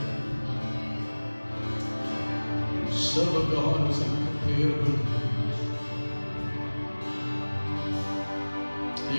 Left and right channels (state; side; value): inverted; both; correlation -1.00